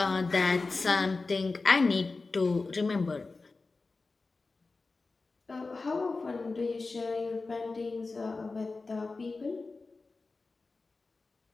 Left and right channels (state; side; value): quieter; right; 3.8 dB